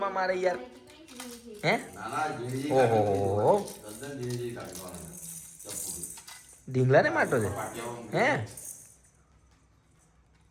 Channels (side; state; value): both; identical; correlation 1.00